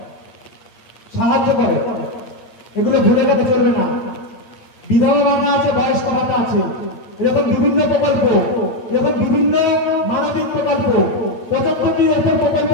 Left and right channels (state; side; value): late; right; 8.6 ms